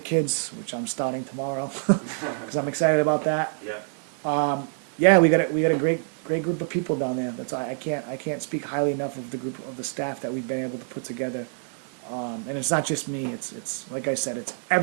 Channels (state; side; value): silent; left; digital silence